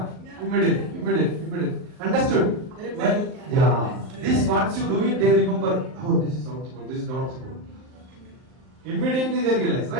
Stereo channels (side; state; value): left; late; 39 ms